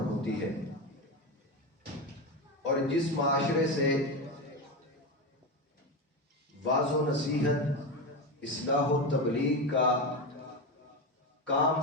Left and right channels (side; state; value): both; normal; correlation 0.17